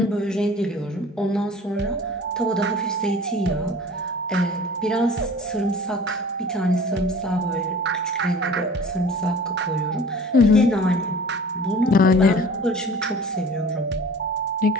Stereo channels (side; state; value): both; normal; correlation 0.44